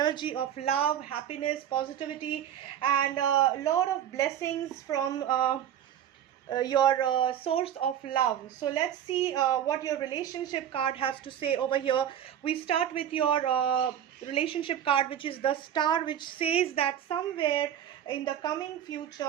of love, happiness, positivity, and a lot of blessings from your source of love. So let's see what your relationship card has to say over here. We start with your relationship card, which is the star, which says that somewhere in the coming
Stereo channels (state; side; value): quieter; left; 10.1 dB